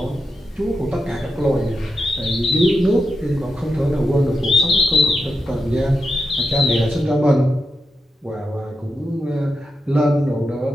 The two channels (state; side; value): normal; both; correlation 0.87